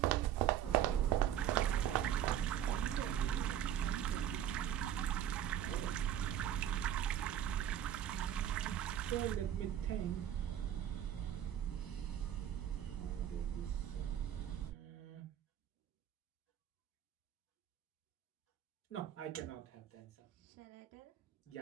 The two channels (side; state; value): left; quieter; 10.6 dB